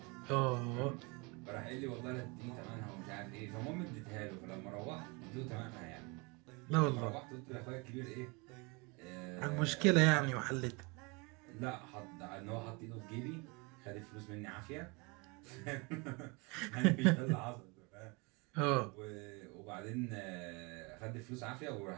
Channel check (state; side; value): quieter; left; 28.7 dB